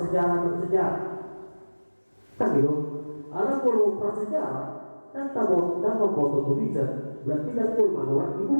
dan sejarah kan gitu ala kalau prasejarah dan tabot dan memfoto tulisan berarti dan pun manual di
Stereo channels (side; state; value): both; inverted; correlation -1.00